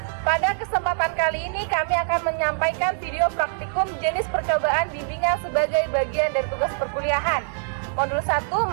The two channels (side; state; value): left; silent; digital silence